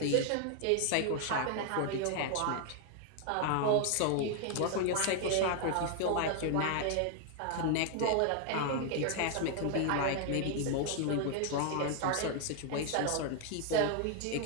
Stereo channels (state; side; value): different; both; correlation 0.00